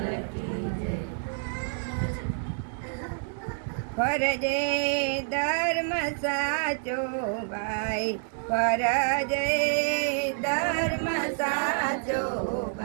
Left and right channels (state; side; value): silent; left; digital silence